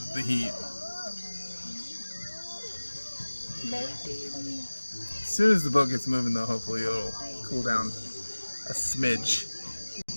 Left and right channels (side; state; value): both; inverted; correlation -1.00